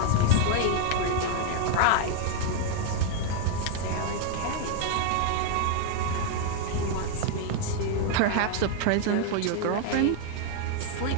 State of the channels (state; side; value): different; both; correlation 0.00